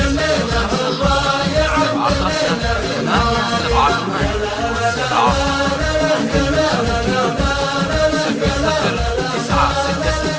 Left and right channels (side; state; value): both; identical; correlation 1.00